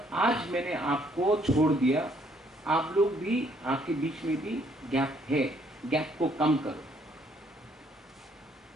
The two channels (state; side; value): normal; both; correlation 0.66